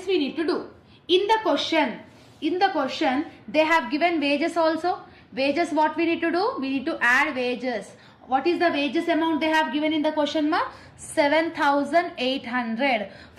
we need to do. In the question they have given wages also. Wages, what we need to do? We need to add wages. What is the wages amount they have given in the question ma? 7,800.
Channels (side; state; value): both; identical; correlation 1.00